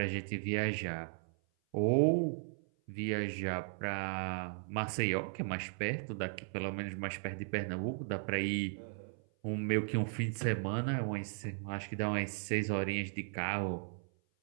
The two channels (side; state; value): left; silent; 53 dB below the other